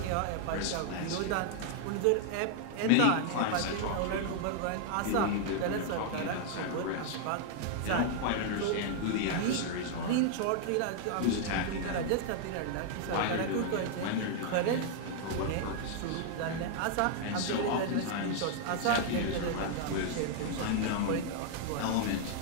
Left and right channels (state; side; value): different; both; correlation 0.00